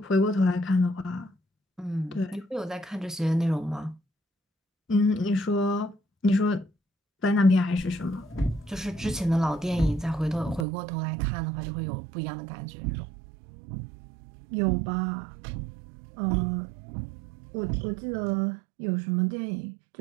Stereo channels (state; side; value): drops out; left; at 10.7 s